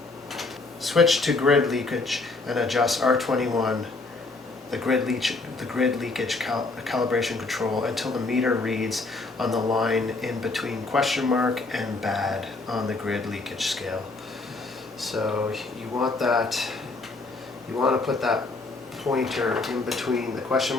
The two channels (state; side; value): quieter; right; 3.5 dB